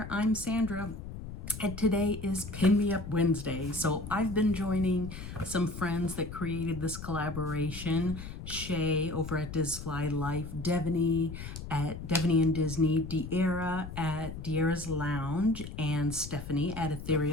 I'm Sandra, and today is Pin Me Up Wednesday. So I've been joining some friends that created this collaboration. Shae over at Disfly Life, Devoney at Devoney and Disney, Dierra at Dierra's Lounge, and Stephanie at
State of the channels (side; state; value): left; noise; rumble, 10 dB below the sound